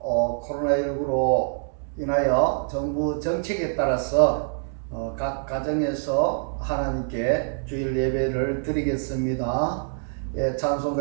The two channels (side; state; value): left; silent; digital silence